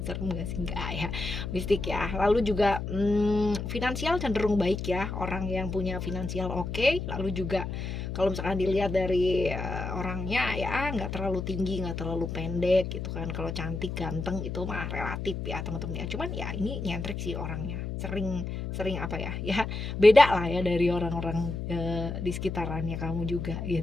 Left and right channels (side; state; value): left; noise; hum, 5 dB below the sound